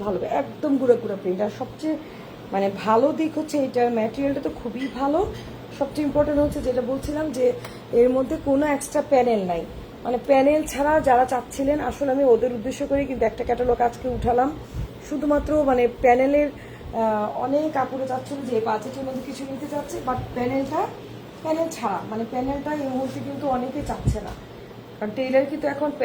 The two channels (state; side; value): identical; both; correlation 1.00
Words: ভালো হবে, একদম গুঁড়ো গুঁড়ো প্রিন্ট। আর সবচেয়ে মানে ভালো দিক হচ্ছে এটার ম্যাটেরিয়ালটা তো খুবই ভালো। সবচেয়ে ইম্পর্টেন্ট হচ্ছে যেটা বলছিলাম যে এর মধ্যে কোনো এক্সট্রা প্যানেল নাই, মানে প্যানেল ছাড়া যারা চাচ্ছিলেন, আসলে আমি ওদের উদ্দেশ্য করে কিন্তু একটা ক্যাটালগ আজকে উঠালাম, শুধুমাত্র মানে প্যানেলের অনেক কাপড়ে চাচ্ছিল যে বাজেটের মধ্যে কিছু নিতে চাচ্ছে, বাট প্যানেল ছাড়া, মানে প্যানেলটা এই মুহূর্তে কিন্তু অনেকে চাচ্ছে না, কারণ টেইলার কিন্তু এখন